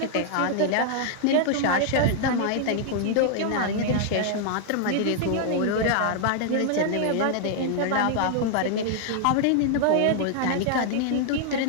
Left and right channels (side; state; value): both; different; correlation 0.00